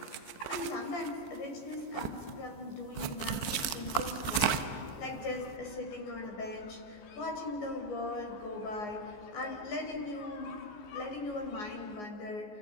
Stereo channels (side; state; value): right; late; 14 ms